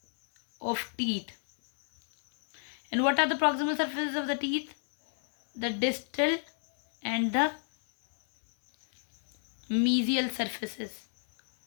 of teeth. And what are the proximal surfaces of the teeth? The distal and the mesial surfaces.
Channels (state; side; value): silent; right; 58 dB below the other